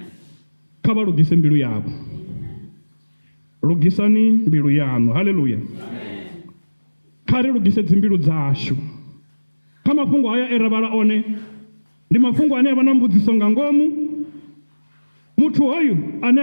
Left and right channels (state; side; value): inverted; both; correlation -1.00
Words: Kha vha lugise mbilu yavho. Lugisani mbilu yaṋu. Haleluya. Kha ri lugise dzimbilu dzashu. Kha mafhungo haya e ra vhala one ndi mafhungo ane a vha na mbudziso nga ngomu. Muthu hoyu ane